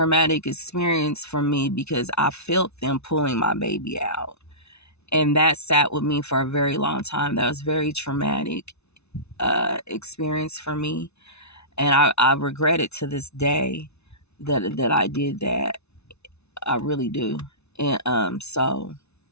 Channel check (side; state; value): right; late; 0.81 ms